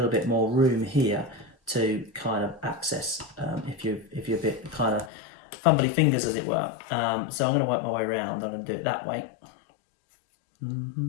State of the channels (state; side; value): drops out; right; at 5.1 s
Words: bit more room here to kind of access if you're a bit kind of fumbly fingers, as it were. So I'm going to work my way around. I'm going to do it that way.